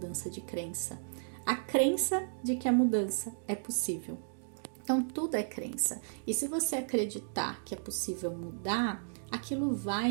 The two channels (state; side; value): silent; left; digital silence